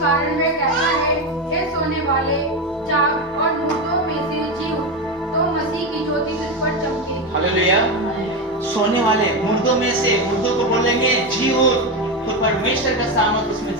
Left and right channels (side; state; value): both; normal; correlation 0.14